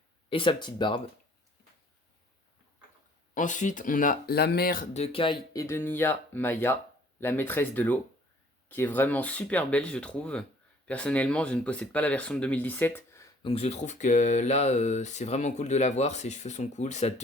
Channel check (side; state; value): both; normal; correlation 0.56